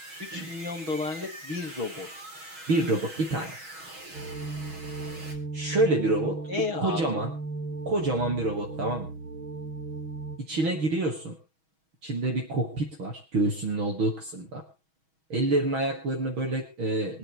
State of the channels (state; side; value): late; left; 6.3 ms